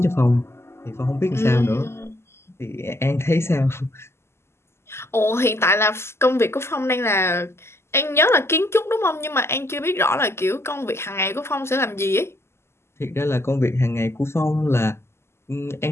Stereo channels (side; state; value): right; late; 0.12 ms